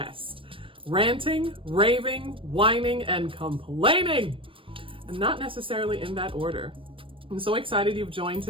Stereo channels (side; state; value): left; late; 0.25 ms